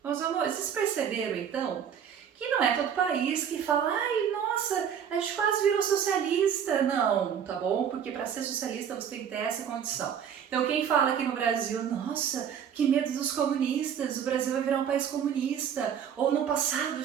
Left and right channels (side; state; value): left; quieter; 8.3 dB